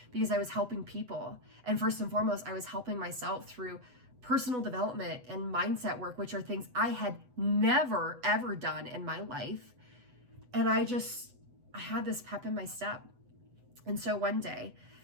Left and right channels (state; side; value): late; left; 8.0 ms